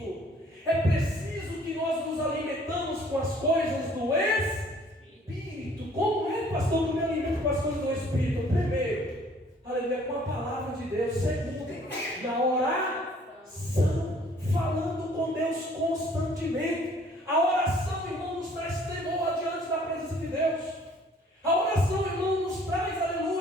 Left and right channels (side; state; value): both; normal; correlation 0.58